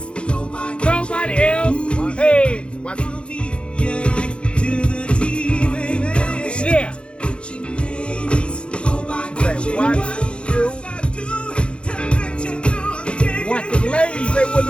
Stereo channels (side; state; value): right; late; 0.057 ms